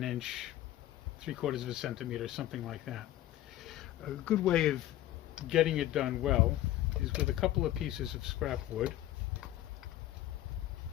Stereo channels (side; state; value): right; quieter; 14.0 dB